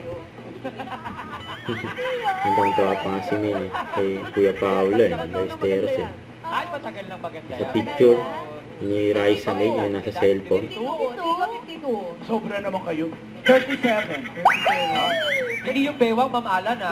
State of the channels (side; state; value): both; identical; correlation 1.00